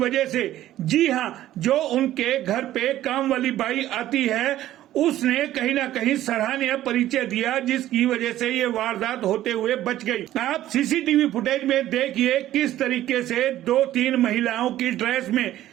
से। जी हाँ, जो उनके घर पे काम वाली बाई आती है, उसने कहीं ना कहीं सराहनीय परिचय दिया, जिसकी वजह से ये वारदात होते हुए बच गई। आप सीसीटीवी फुटेज में देखिए किस तरीके से 2-3 महिलाओं की ड्रेस में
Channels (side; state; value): left; quieter; 13.6 dB